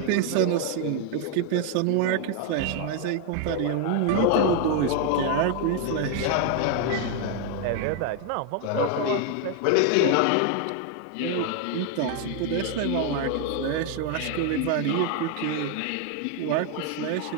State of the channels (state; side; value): different; both; correlation 0.01